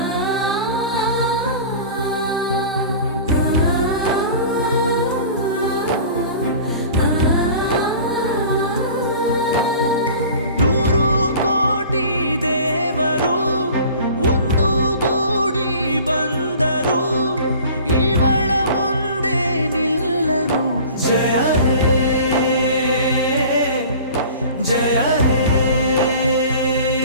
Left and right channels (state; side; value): inverted; both; correlation -0.43